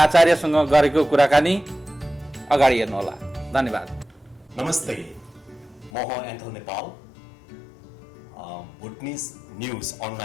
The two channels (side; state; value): right; drops out; at 5.9 s